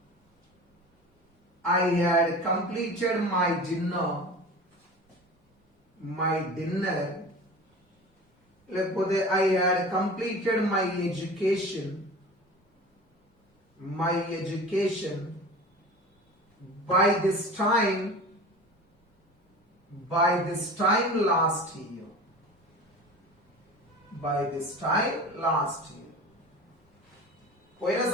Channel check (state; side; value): normal; both; correlation 0.36